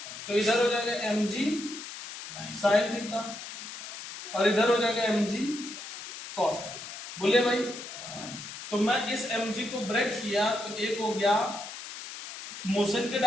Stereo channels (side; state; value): left; noise; hiss, 11 dB below the sound